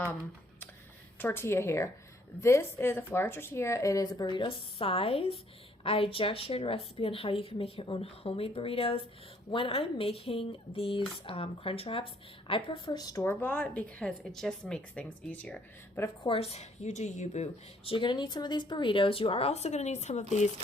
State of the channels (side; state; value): both; normal; correlation 0.65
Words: tortilla here. This is a flour tortilla. It is a burrito size. I just shared a recipe on how you can make your own homemade burritos. When I'm making these crunch wraps, I prefer store-bought because it just makes things easier. But of course, you do you, boo. So you're going to need some of these burritos. You are also going to need some of these